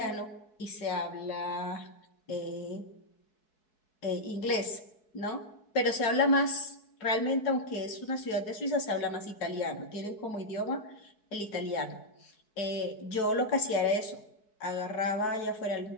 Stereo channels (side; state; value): right; late; 4.6 ms